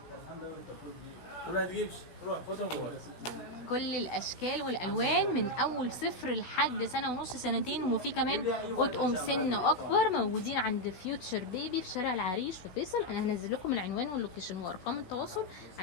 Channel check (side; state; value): right; late; 16 ms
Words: كل الاشكال والالوان من اول 0 لحد 1.5 سنة 2. وفي كمان اطقم سن اكبر موجودين عند فيوتشر بيبي في شارع العريش في فيصل. انا هنزل لكم العنوان واللوكيشن وارقام التواصل